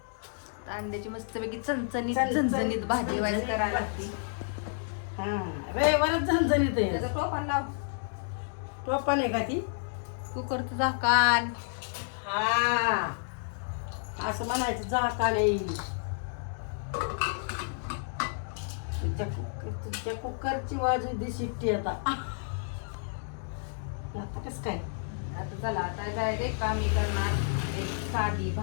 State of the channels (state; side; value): silent; right; digital silence